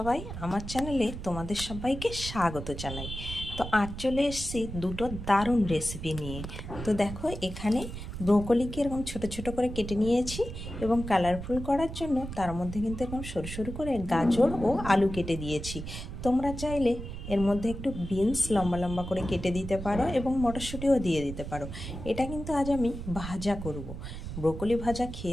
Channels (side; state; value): right; noise; rumble, 8 dB below the sound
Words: আমার চ্যানেলে তোমাদের সবাইকে স্বাগত জানাই। তো আজ চলে এসেছি দুটো দারুণ রেসিপি নিয়ে। তো দেখো এখানে ব্রোকলিকে এরকম ছোট ছোট করে কেটে নিয়েছি এবং কালারফুল করার জন্য তার মধ্যে কিন্তু এরকম সরু সরু করে গাজর ও আলু কেটে দিয়েছি। তোমরা চাইলে এর মধ্যে একটু বিনস লম্বা লম্বা করে কেটে দিতে পারো এবং মটরশুঁটিও দিয়ে দিতে পারো। এটা কিন্তু আজ আমি ভাজা করব। ব্রোকলি ভাজা